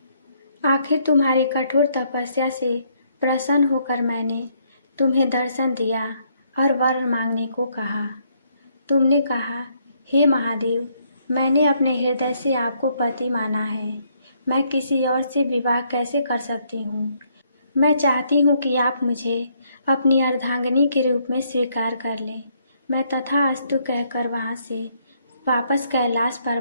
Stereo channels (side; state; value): both; inverted; correlation -0.71